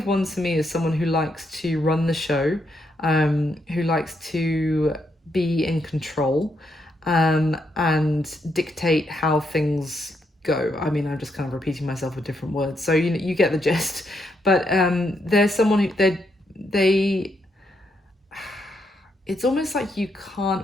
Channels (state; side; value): normal; both; correlation 0.78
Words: Wands to me is someone who likes to run the show, who likes to be in control, and dictate how things go. I mean, I'm just kind of repeating myself with different words, so you get the gist. But there's someone who they it's almost like you